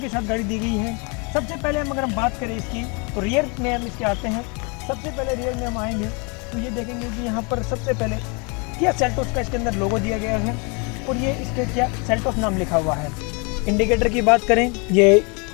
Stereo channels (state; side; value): quieter; right; 32.9 dB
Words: के साथ गाड़ी दी गई है। सबसे पहले अगर हम बात करें इसकी तो रियर में हम इसके आते हैं। सबसे पहले रियर में हम आएंगे तो ये देखेंगे कि यहाँ पर सबसे पहले किया सेल्टोस का इसके अंदर लोगो दिया गया है और ये इसके किया सेल्टोस नाम लिखा हुआ है। इंडिकेटर की बात करें, ये